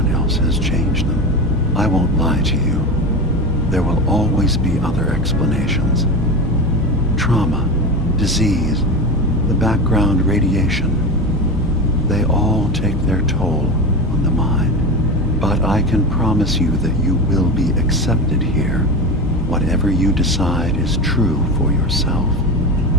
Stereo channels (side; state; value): both; normal; correlation 0.24